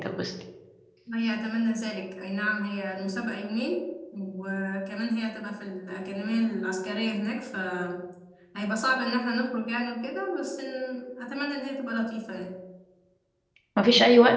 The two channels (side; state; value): both; identical; correlation 1.00